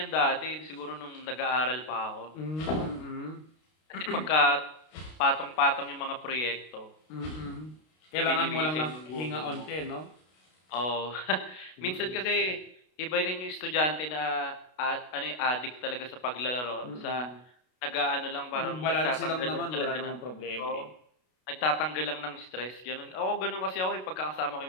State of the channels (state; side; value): late; right; 32 ms